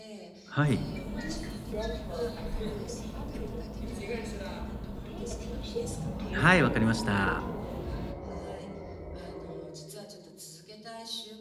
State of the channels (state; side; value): identical; both; correlation 1.00